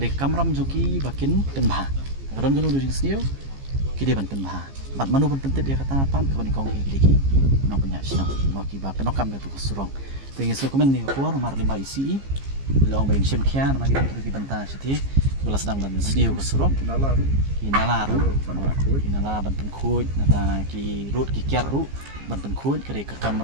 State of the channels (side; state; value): left; late; 15 ms